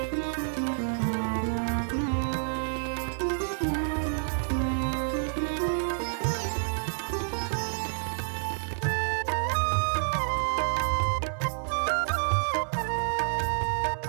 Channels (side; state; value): left; silent; 59 dB below the other